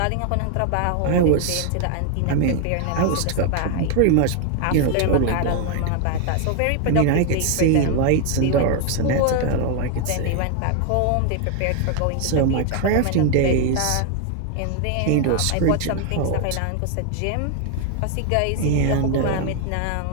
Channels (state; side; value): different; both; correlation 0.01